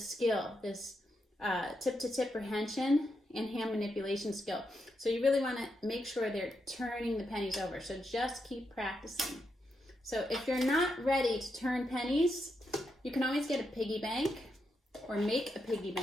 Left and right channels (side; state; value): both; normal; correlation 0.83